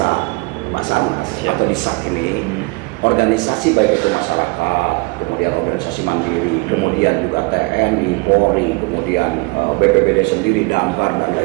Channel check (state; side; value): quieter; left; 28.2 dB